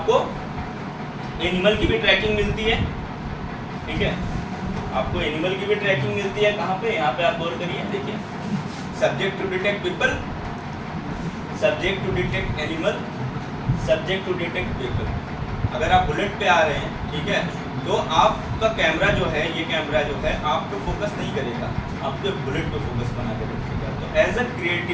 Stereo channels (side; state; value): both; identical; correlation 1.00